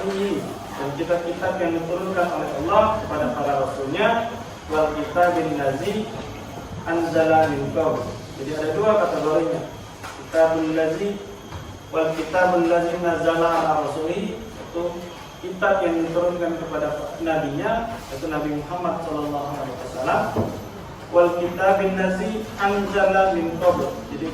dan kitab-kitab yang diturunkan oleh Allah kepada para rasulnya, wal kitabil ladzi anzala min qabl. Jadi ada dua kategorinya. Kitabul ladzi wal kitabul ladzi nazzala ala rasulihi, itu kitab yang diturunkan kepada nabinya, yaitu Nabi Muhammad sallallahu alaihi wasallam. Wal kitabil ladzi anzala min qabl. Jadi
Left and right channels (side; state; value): both; identical; correlation 1.00